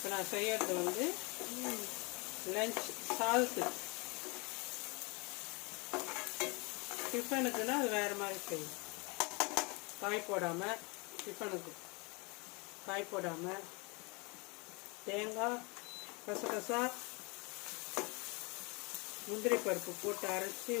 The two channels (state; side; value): quieter; right; 29.1 dB